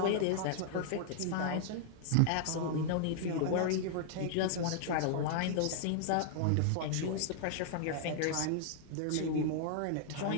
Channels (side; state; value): both; different; correlation -0.01